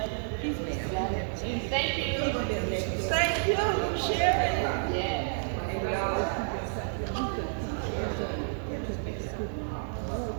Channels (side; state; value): left; silent; 55 dB below the other